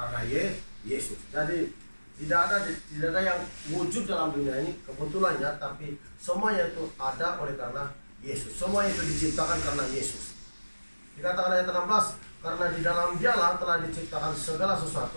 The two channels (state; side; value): inverted; both; correlation -1.00